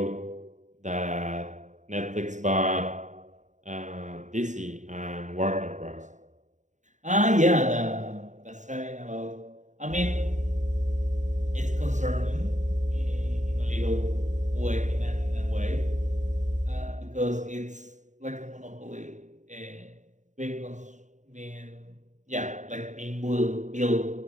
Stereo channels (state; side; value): late; left; 0.35 ms